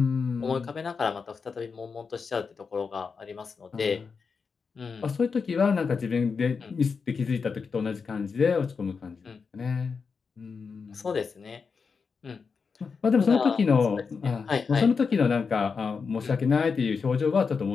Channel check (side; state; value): right; quieter; 5.3 dB